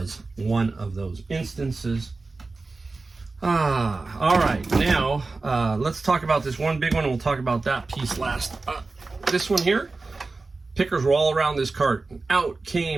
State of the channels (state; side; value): quieter; left; 3.7 dB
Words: one of those instances. All right, now let's talk about this one big one, and we'll talk about that piece last. This one here, pickers were all around this cart. Out